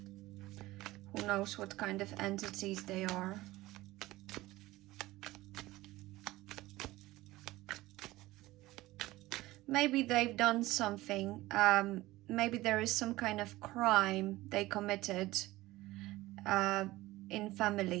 Who knows what kind of entities they are. Maybe they've done something. Maybe there is some kind of crime they committed in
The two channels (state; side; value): quieter; left; 18.2 dB